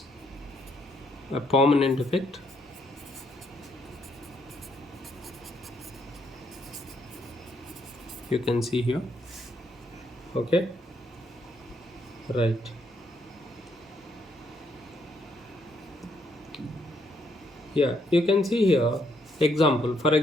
a permanent effect. You can see here. Okay, right. Yeah, you can see here example. For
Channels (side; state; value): both; normal; correlation 0.73